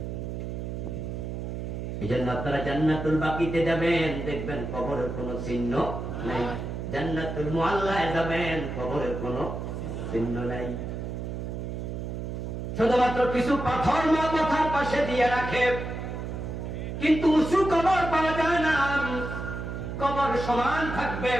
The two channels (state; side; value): noise; right; hum, 5 dB below the sound